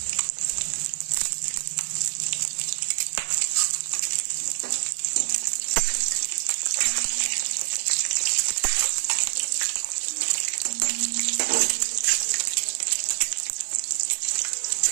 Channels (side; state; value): left; silent; 61 dB below the other